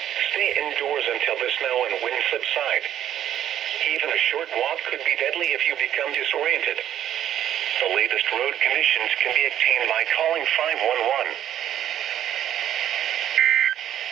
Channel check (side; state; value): left; quieter; 11.0 dB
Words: Stay indoors until the snow and wind subside. Even a short walk could be deadly if you become disoriented. The latest road conditions can be obtained by calling 511.